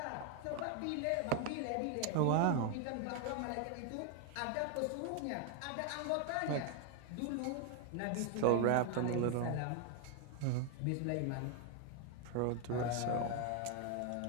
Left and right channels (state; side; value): different; both; correlation 0.00